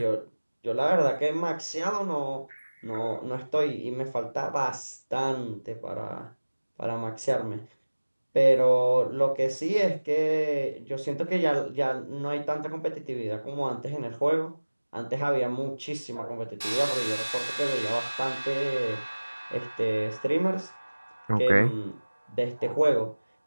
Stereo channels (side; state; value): both; inverted; correlation -1.00